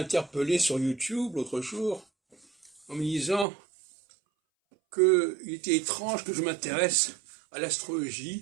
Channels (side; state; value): left; drops out; at 3.5 s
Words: sur YouTube l'autre jour en me disant qu'il était étrange que je m'intéresse à